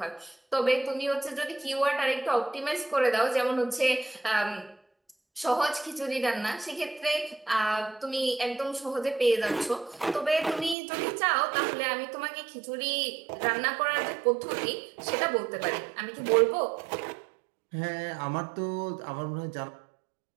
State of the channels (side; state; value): left; drops out; at 10.8 s